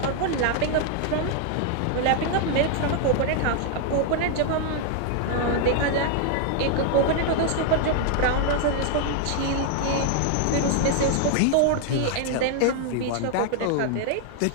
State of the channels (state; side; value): different; both; correlation 0.00